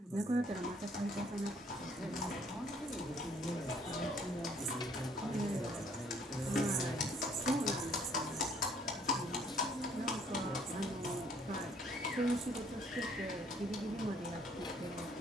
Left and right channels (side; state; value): both; normal; correlation 0.62